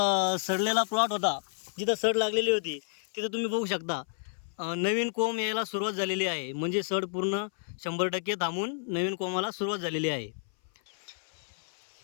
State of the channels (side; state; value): right; silent; 57 dB below the other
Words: सडलेला प्लॉट होता, जिथं सड लागलेली होती तिथं तुम्ही बघू शकता नवीन कोंब यायला सुरुवात झालेली आहे. म्हणजे सड पूर्ण 100% थांबून नवीन कोंबाला सुरुवात झालेली आहे.